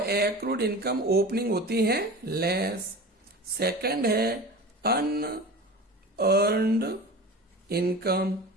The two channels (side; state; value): both; normal; correlation 0.34